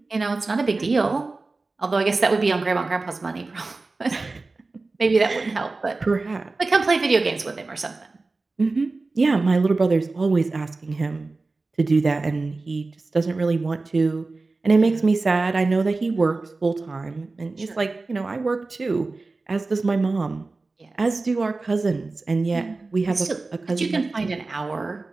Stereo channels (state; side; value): quieter; left; 3.6 dB